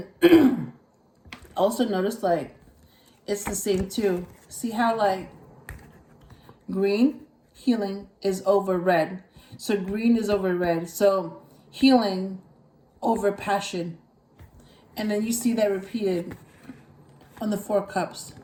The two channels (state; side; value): identical; both; correlation 1.00